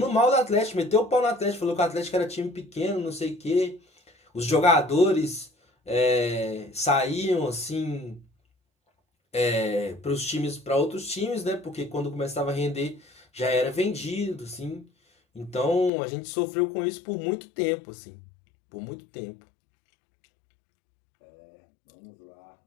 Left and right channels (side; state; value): right; drops out; at 15.9 s